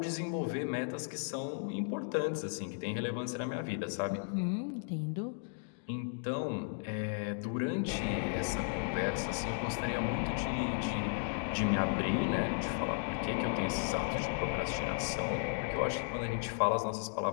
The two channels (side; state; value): right; silent; digital silence